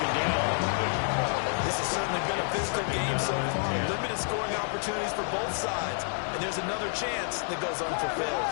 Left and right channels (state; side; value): silent; right; 59 dB below the other